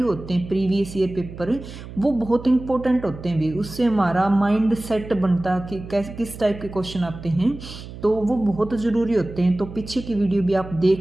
होते हैं, प्रीवियस ईयर पेपर, वो बहुत इंपॉर्टेंट होते हैं भी। उससे हमारा माइंड सेट बनता कि कैसे किस टाइप के क्वेश्चन आते हैं, तो वो बहुत ज़रूरी होते हैं। तो पीछे की वीडियो भी आप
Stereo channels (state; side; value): noise; right; hum, 13 dB below the sound